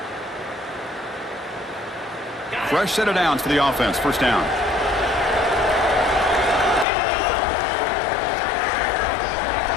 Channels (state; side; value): drops out; right; at 6.9 s